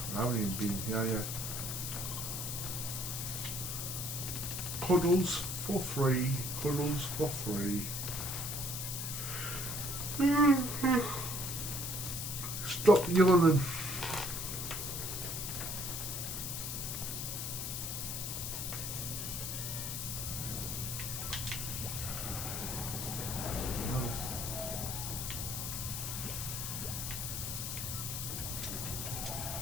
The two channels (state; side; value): noise; left; hiss, 3 dB below the sound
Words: I haven't even been here yet. Cuddles for free. Cuddles for free. Stop yawning.